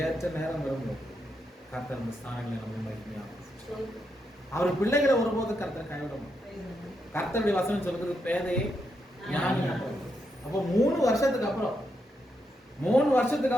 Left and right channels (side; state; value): both; normal; correlation 0.82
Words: நேரம் வரும்போது கர்த்தர் அந்த ஸ்தானங்களை நம்ம மகிமையாகும். அவர் பிள்ளைகளை ஒருபோது கர்த்தர் கைவிடணும். கர்த்தருடைய வசனம் சொல்றது பேதையை ஞானி. அப்போ 3 வருஷத்துக்கு